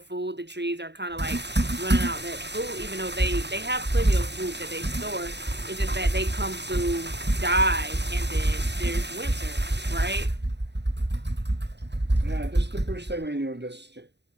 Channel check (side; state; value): left; late; 0.50 ms